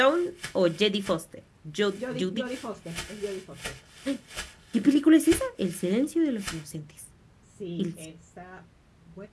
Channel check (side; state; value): both; identical; correlation 1.00